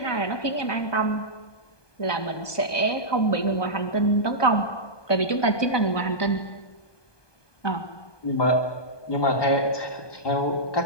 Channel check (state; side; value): late; right; 1.2 ms